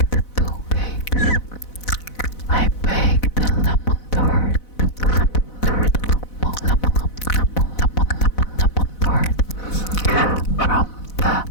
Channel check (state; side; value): late; right; 4.0 ms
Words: 2 cakes. I baked a lemon tart from the